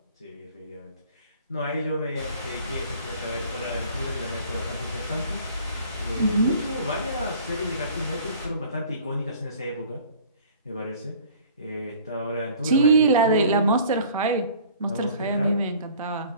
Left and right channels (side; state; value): both; inverted; correlation -0.50